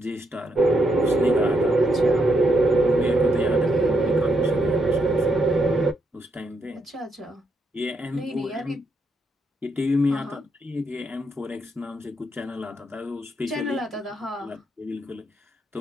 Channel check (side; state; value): both; normal; correlation 0.79